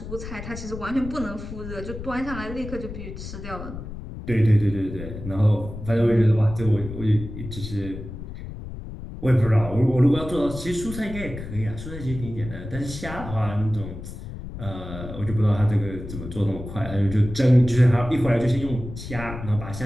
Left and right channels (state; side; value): noise; left; rumble, 10 dB below the sound